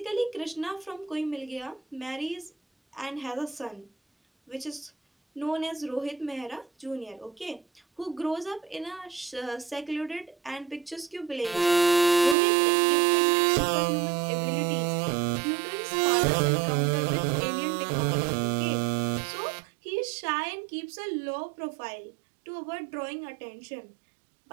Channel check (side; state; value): left; drops out; at 12.4 s